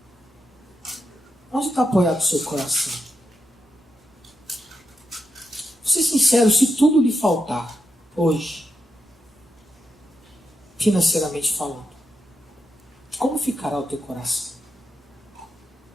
Onde está apoiado o seu coração? Vou ser sincero, se tudo lhe faltar hoje, financeiramente falando, como ficará o teu coração?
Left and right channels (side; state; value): both; normal; correlation 0.85